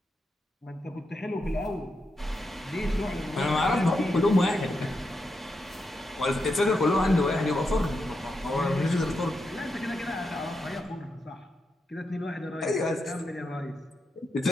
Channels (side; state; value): both; normal; correlation 0.85